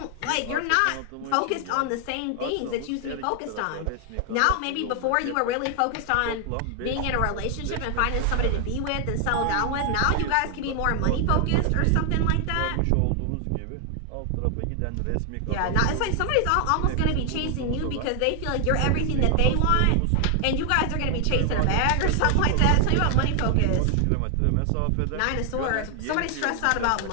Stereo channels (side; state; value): both; different; correlation 0.00